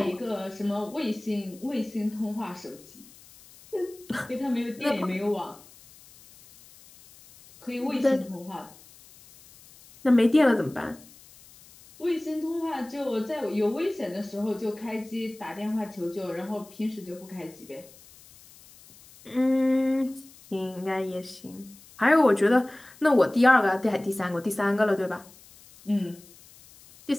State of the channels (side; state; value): left; noise; hiss, 23 dB below the sound